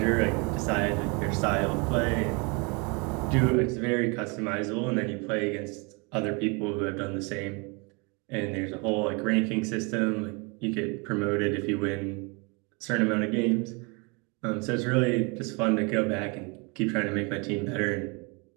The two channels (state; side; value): quieter; left; 30.9 dB